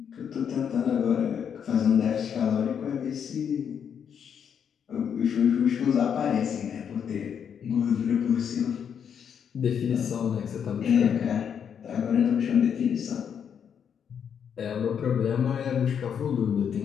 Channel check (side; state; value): right; quieter; 7.8 dB